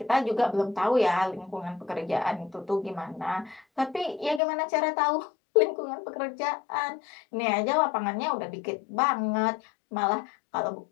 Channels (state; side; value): drops out; right; at 4.4 s